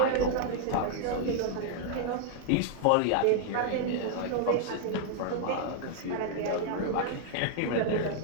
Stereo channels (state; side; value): different; both; correlation 0.00